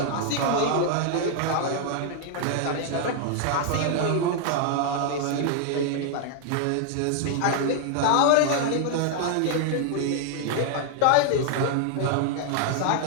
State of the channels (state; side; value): different; both; correlation 0.00